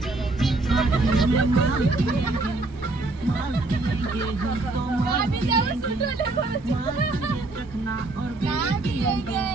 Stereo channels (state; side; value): quieter; left; 3.1 dB